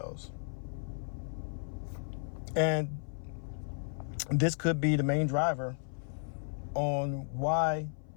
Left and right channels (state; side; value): silent; right; 55 dB below the other